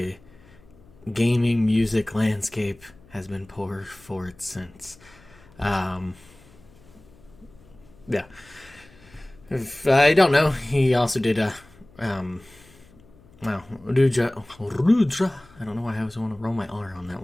gaming music landscape has been poor for it since. Yeah. If I don't know, he also did Rudra. I don't know why I always want to roll my R on that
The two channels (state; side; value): noise; left; hum, 26 dB below the sound